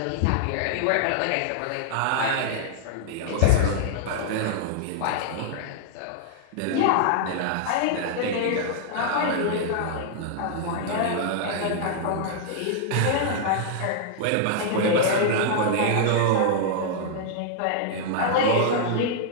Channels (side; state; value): both; different; correlation -0.01